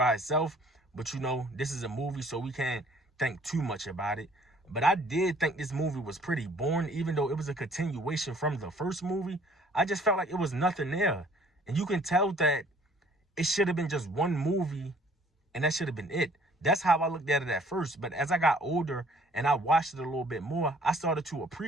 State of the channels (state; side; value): normal; both; correlation 0.57